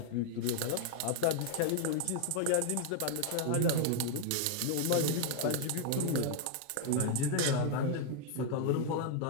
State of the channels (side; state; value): both; different; correlation 0.00